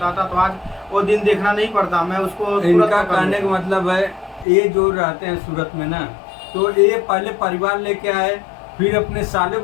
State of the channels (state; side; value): drops out; right; at 4.5 s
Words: तो आज वो दिन देखना नहीं पड़ता, मैं उसको इनका कहने का मतलब है, ये जो रहते हैं सूरत में ना, तो ये पहले परिवार लेके आए, फिर अपने साले